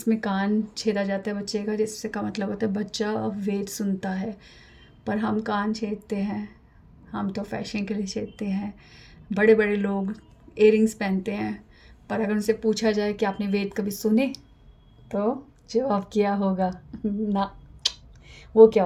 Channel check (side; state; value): both; identical; correlation 1.00